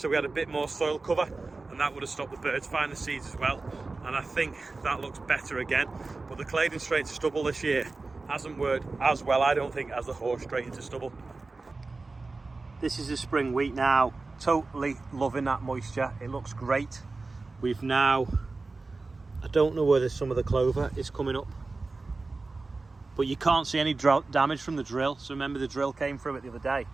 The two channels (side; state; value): left; quieter; 3.6 dB